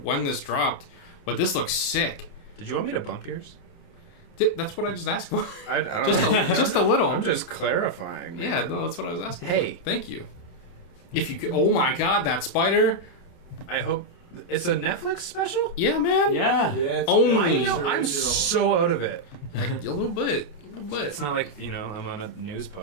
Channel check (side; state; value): right; late; 28 ms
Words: this dropped, but this looks sick. Did you want me to bump yours? That's what I just asked for. I don't just know. just a little. I'm just clarifying, man. Yeah, no, that's what I was asking. Hey. For. Thank you. If you could, oh my God, that spider! I hope it's a Netflix special. Yeah, man. Yeah. It's Only. I'm so out of it. Like, a little bit. It's not like I'm on a news